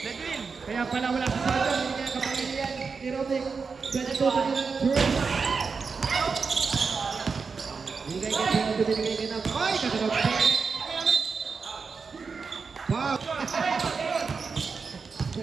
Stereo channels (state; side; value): quieter; left; 5.1 dB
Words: na din. Kaya pala wala sa sarap. Hindi kaya kapangilian ni Rocky. Ganito pa nila ng Durant. Binigay kay Rocky, binigay kay Nam. Ay, kagano'n. Wow.